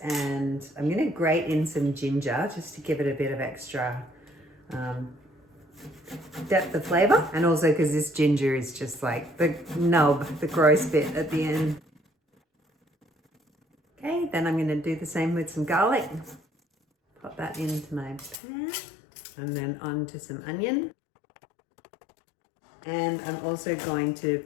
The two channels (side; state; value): right; drops out; at 18.4 s